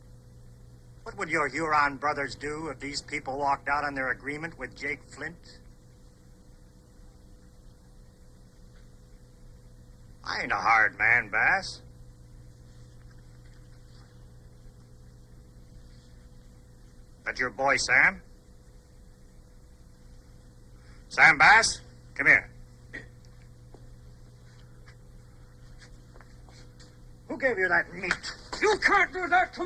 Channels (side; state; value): both; identical; correlation 1.00